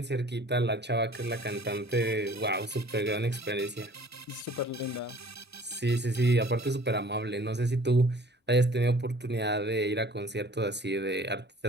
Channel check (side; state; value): both; normal; correlation 0.51